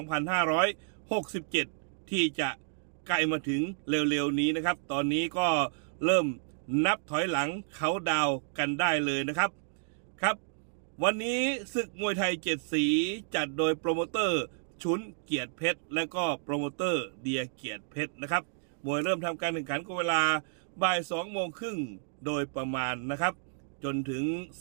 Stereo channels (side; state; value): left; silent; digital silence